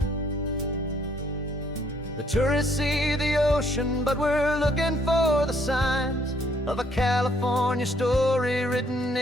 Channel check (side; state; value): both; normal; correlation 0.66